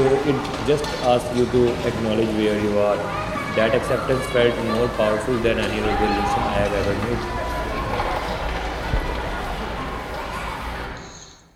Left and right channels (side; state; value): both; identical; correlation 1.00